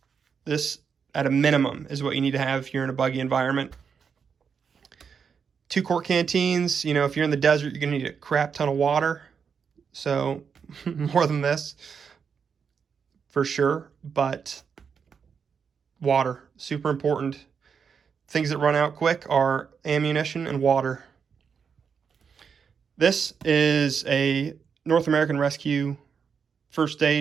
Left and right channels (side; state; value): left; quieter; 6.5 dB